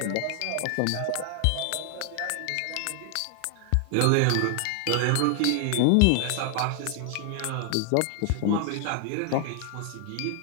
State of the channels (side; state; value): both; different; correlation 0.00